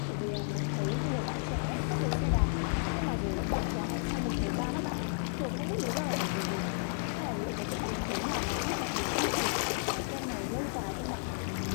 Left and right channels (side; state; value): right; silent; digital silence